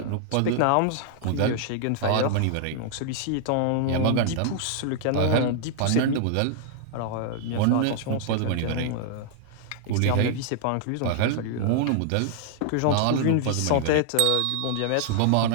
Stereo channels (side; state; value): both; different; correlation -0.01